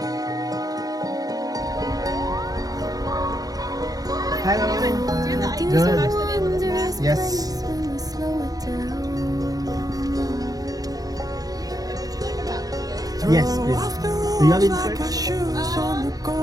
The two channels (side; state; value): left; late; 0.18 ms